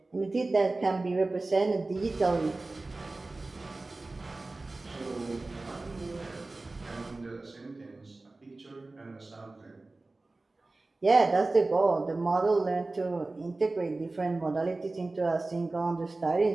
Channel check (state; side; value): quieter; left; 3.2 dB